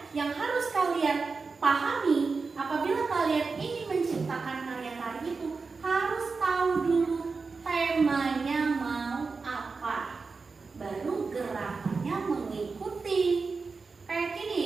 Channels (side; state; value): left; quieter; 4.5 dB